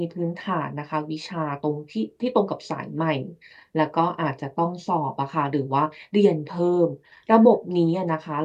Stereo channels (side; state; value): both; identical; correlation 1.00